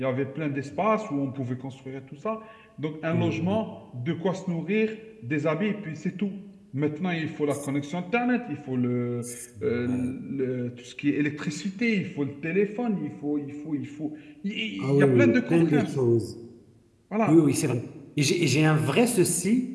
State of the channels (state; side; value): identical; both; correlation 1.00